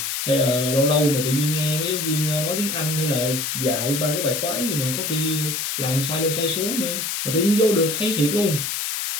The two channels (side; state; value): left; noise; hiss, 2 dB below the sound